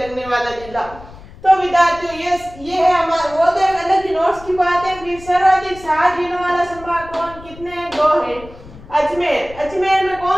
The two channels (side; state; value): left; noise; rumble, 18 dB below the sound